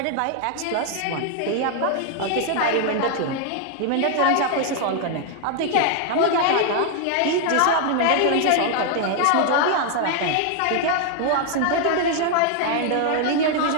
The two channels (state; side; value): different; both; correlation 0.00